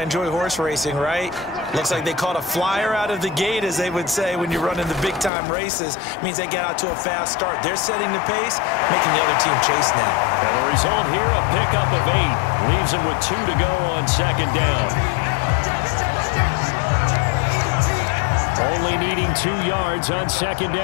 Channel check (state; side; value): drops out; right; at 5.3 s